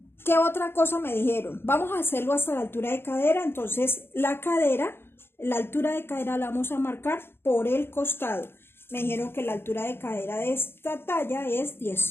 ¿Qué otra cosa me dijeron? Vamos a hacerlo hasta la altura de cadera. Entonces la altura de cadera la vamos a marcar por el costado. Me dijeron que la altura de cadera de esta talla es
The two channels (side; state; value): right; late; 0.11 ms